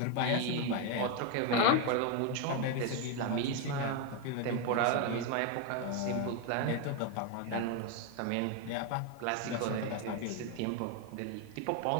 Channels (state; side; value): different; both; correlation 0.02